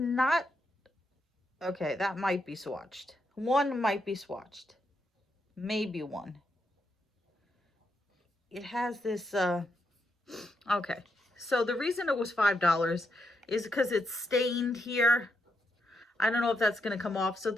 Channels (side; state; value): both; normal; correlation 0.81